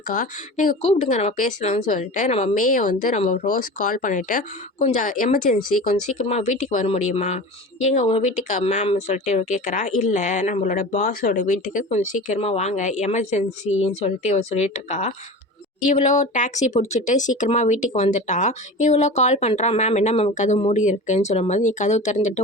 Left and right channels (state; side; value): normal; both; correlation 0.33